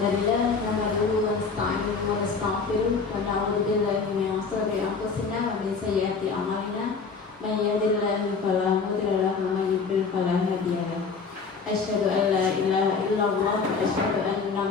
nahmaduhu wa nasta'inuhu wa nastaghfiruh wa na'udzu billahi min shururi anfusina wa min sayyiati a'malina. Man yahdihillahu fala mudilla lahu wa man yudlil fala hadiya lahu. Asyhadu an la ilaha illallah wa asyhadu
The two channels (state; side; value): quieter; right; 5.0 dB